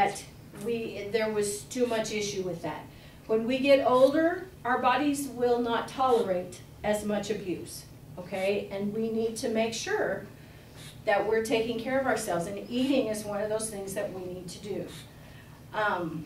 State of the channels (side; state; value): both; identical; correlation 1.00